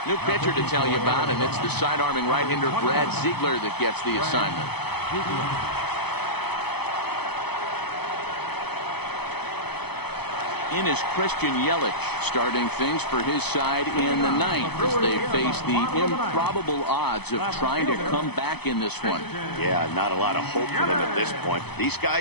New pitcher to tell you about, and it's the side-arming right-hander Brad Ziegler that gets the assignment. In is Christian Yelich, starting things for his side in the 9th as they face the improbable odds of trying to come back in this one. Yeah, not a lot of hope for them at this point. These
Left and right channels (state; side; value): late; right; 0.98 ms